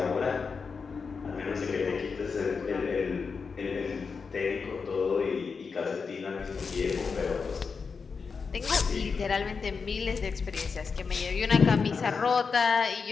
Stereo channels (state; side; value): quieter; right; 5.2 dB